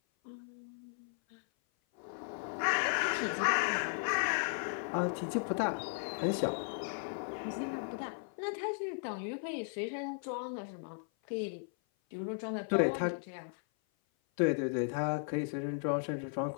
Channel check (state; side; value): silent; right; 54 dB below the other